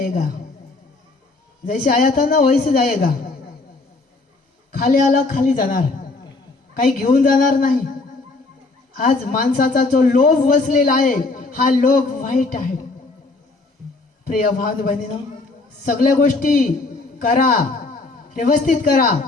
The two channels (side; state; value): right; quieter; 3.5 dB